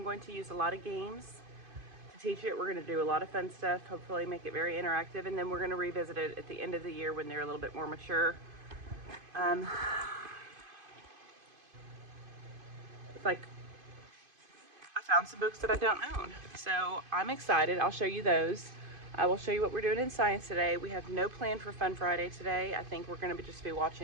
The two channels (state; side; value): late; left; 2.5 ms